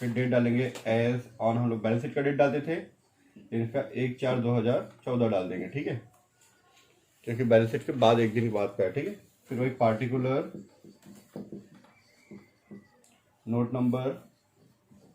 डेट डालेंगे एज ऑन, हम लोग बैलेंस शीट का डेट डालते थे, इसका 1/4/2014 डाल देंगे, ठीक है, क्योंकि बैलेंस शीट के बाद एक दिन बाद का है, ठीक है। फिर वही पार्टिकुलर नोट नंबर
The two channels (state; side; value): identical; both; correlation 1.00